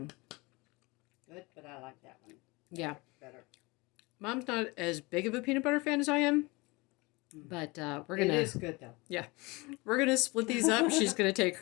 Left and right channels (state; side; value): quieter; right; 24.8 dB